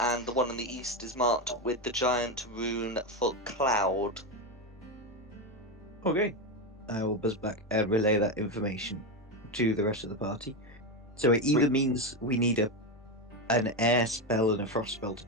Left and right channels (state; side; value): normal; both; correlation 0.12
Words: the one on the east is marked with the giant rune for cloud. Okay. I will buzz back and relay that information to the rest of the party. So it either means we need an air spell and a frost spell to